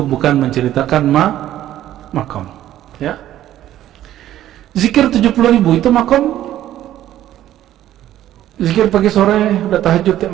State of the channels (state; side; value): quieter; left; 12.7 dB